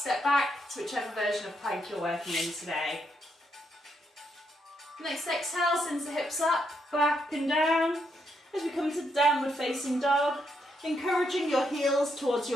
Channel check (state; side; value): normal; both; correlation 0.78